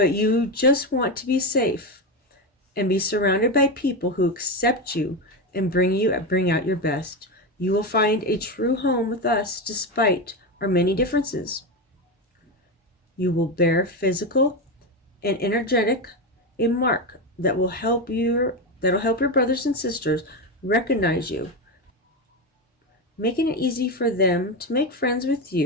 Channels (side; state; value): both; normal; correlation 0.15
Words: you just want to be safe and be surrounded by people who accept you and bring out your best. You will find a true home with us despite our many differences. You will bear physical and energetic a mark that will help your brothers and sisters recognize you, making it easy for them to make friends with